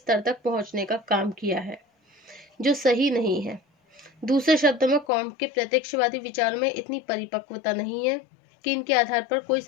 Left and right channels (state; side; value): drops out; right; at 5.1 s